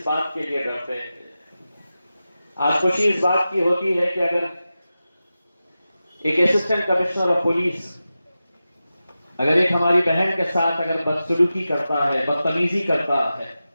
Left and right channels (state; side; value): inverted; both; correlation -0.93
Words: बात के लिए डरते हैं। आज खुशी इस बात की होती है कि अगर एक असिस्टेंट कमिश्नर ऑफ पुलिस अगर एक हमारी बहन के साथ अगर बदसलूकी करता है, बदतमीजी करता है,